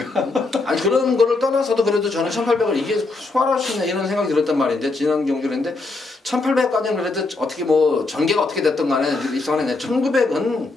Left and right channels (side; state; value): right; quieter; 3.4 dB